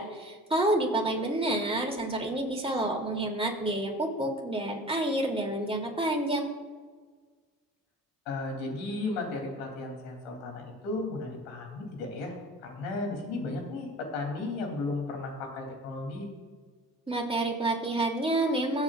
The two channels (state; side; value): normal; both; correlation 0.42